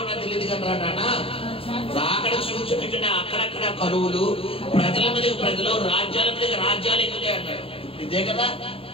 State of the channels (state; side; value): late; right; 0.27 ms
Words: నాకు తెలియదు కదా రానా. రాకడ సూచన అక్కడక్కడ కరువులు, ప్రజల మీద ప్రజలు, రాజ్యాల మీద రాజ్యాలు ఎక్కుతాయి అన్నాడు. ఇదే కదా.